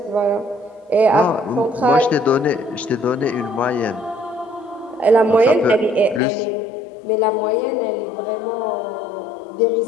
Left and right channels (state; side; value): drops out; right; at 6.2 s